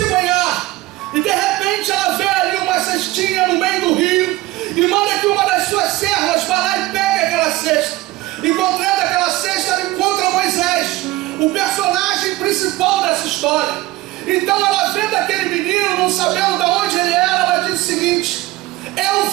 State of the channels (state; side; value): quieter; left; 18.5 dB